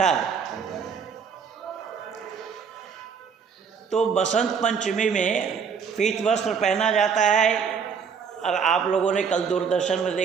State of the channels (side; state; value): left; quieter; 6.4 dB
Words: है। तो बसंत पंचमी में पीत वस्त्र पहना जाता है। और आप लोगों ने कल दूरदर्शन में